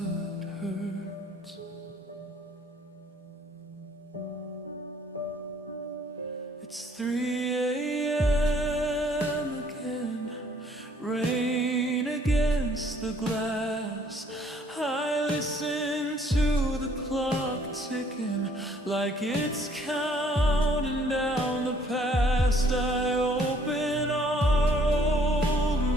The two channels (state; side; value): normal; both; correlation 0.61